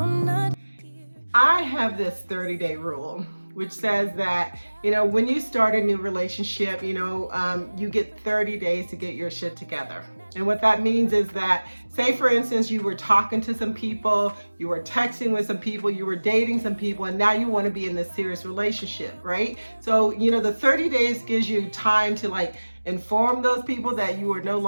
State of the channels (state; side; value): inverted; both; correlation -1.00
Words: not. I have this 30-day rule, which says that, when you start a new relationship, you get 30 days to get your shit together. And what that means is that, say for instance, you were talking to some people, you were texting with some people, you were dating some people, and now you want to be in this serious relationship, right? So, the 30 days gives you time to inform those people that you are no